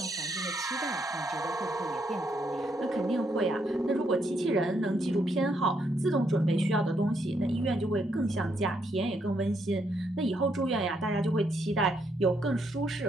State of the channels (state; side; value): normal; both; correlation 0.76